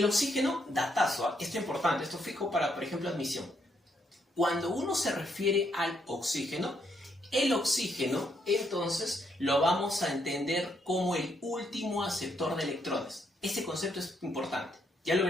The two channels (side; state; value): both; normal; correlation 0.75